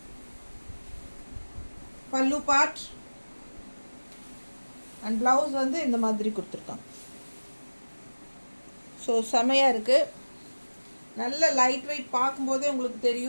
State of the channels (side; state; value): both; inverted; correlation -1.00